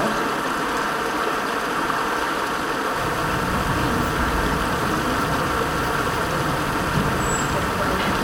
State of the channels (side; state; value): both; identical; correlation 1.00